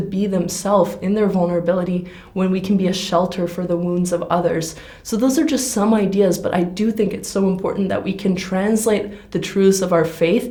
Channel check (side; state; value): both; identical; correlation 1.00